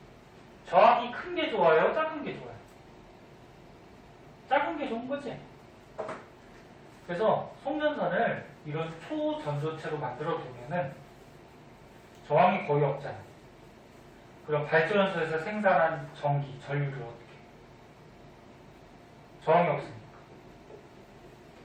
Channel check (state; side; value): identical; both; correlation 1.00